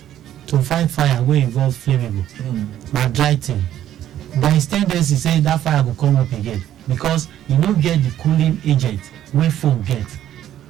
to fight fire wey involve flammable, na dry thing. There is tendency say that fire go come up again because you no get the cooling agent wey foam get.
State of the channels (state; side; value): quieter; left; 11.7 dB